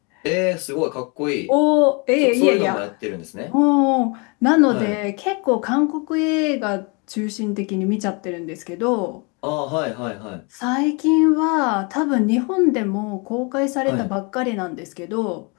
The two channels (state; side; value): quieter; right; 31.6 dB